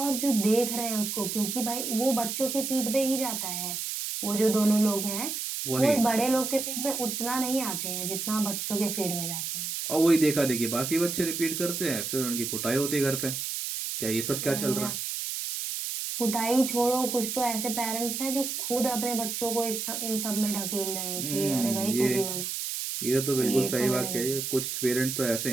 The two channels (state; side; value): noise; right; hiss, 3 dB below the sound